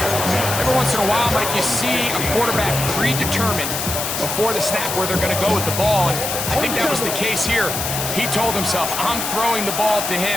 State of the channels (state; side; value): noise; left; hiss, 3 dB below the sound